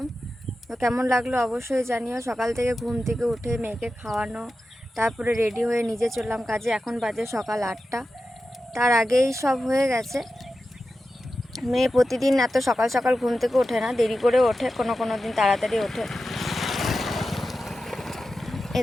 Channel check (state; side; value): normal; both; correlation 0.92